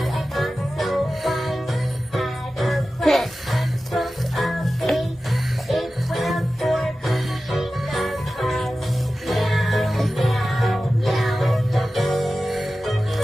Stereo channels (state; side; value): normal; both; correlation 0.94